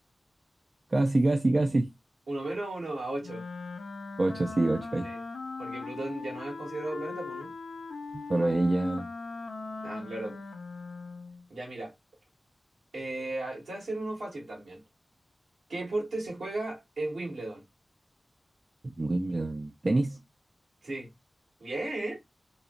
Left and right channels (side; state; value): both; normal; correlation 0.97